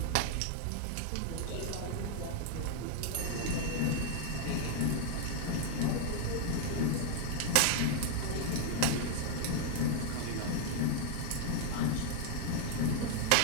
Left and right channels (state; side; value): different; both; correlation 0.00